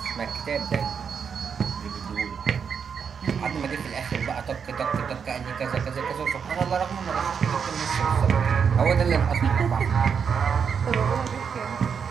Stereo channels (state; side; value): quieter; left; 6.7 dB